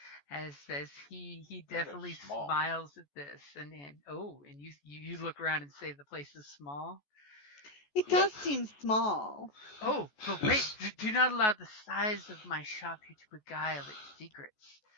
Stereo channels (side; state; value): right; late; 14 ms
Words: As he definitely smiles at this, and you look around and say the place is small. It does seem small. Oh, but wait, do not allow the size of my shop here to beguile its secrets.